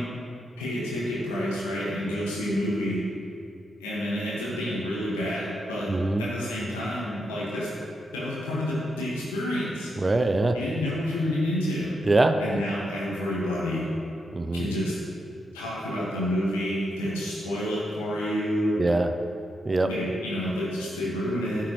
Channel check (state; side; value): normal; both; correlation 0.83